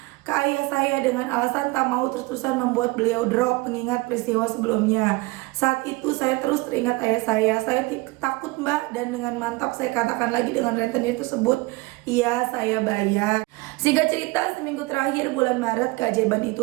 ke ayah saya dengan alasan tak mau terus-terusan membuat beliau drop mengingat peristiwa sebelumnya. Saat itu saya terus teringat ayah saya. Saya takut Mbak dan dengan mantap saya katakan lagi dengan rentenir tersebut, iya saya bayar. Singkat cerita, seminggu terakhir bulan Maret keajaiban itu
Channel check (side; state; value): left; quieter; 22.9 dB